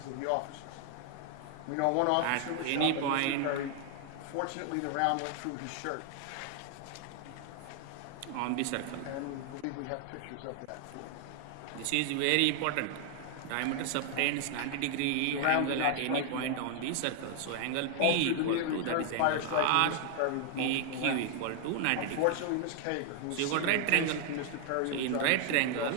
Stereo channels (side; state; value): both; different; correlation 0.00